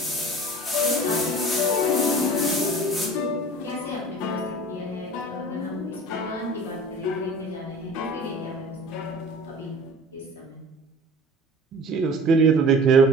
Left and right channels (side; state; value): both; normal; correlation 0.42